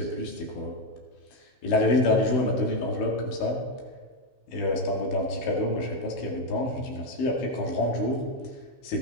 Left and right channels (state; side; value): late; right; 16 ms